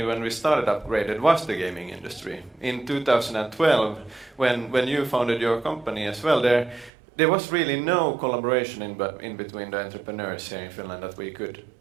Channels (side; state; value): left; drops out; at 6.9 s